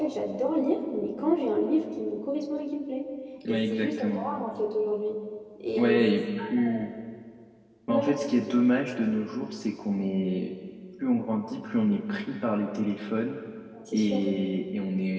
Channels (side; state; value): both; identical; correlation 1.00